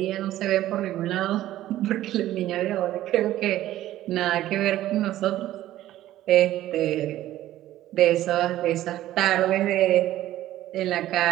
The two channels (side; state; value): left; quieter; 14.1 dB